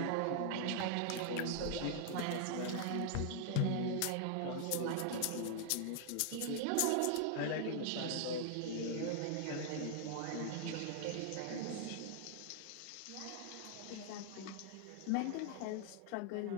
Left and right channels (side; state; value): both; different; correlation 0.00